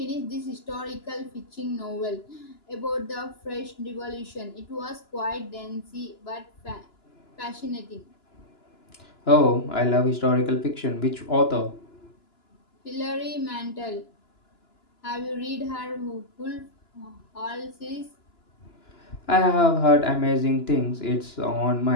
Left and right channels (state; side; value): late; right; 2.9 ms